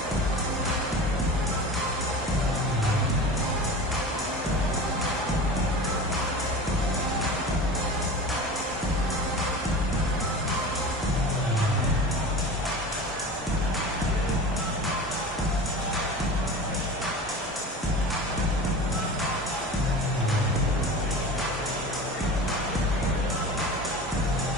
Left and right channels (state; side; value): normal; both; correlation 0.34